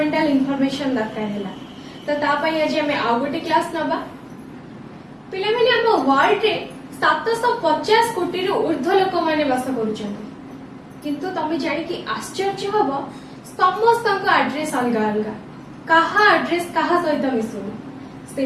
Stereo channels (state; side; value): identical; both; correlation 1.00